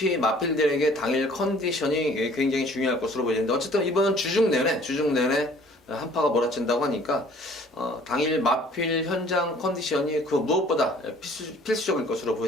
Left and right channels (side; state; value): both; normal; correlation 0.54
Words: 마필들에게 당일 컨디션이 굉장히 중요할 것으로 보이는데, 어쨌든 이번 주중 내내 한파가 몰아친다고 하니까 당일 마필 현장 컨디션이 그 무엇보다 필수적일 것으로